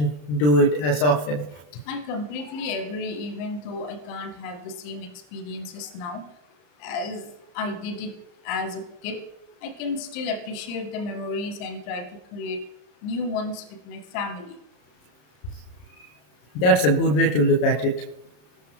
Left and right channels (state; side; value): late; right; 33 ms